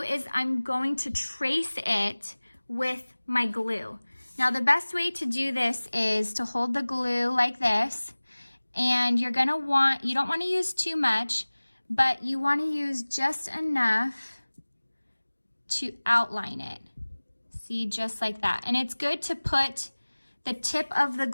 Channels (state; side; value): inverted; both; correlation -1.00